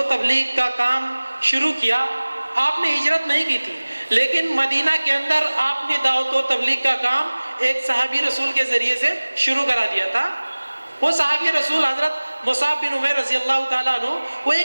تبلیغ کا کام شروع کیا۔ آپ نے ہجرت نہیں کی تھی لیکن مدینہ کے اندر آپ نے دعوت و تبلیغ کا کام ایک صحابی رسول کے ذریعے سے شروع کرا دیا تھا۔ وہ صحابی رسول حضرت مصعب بن عمیر رضی اللہ تعالیٰ عنہ وہ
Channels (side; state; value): both; inverted; correlation -1.00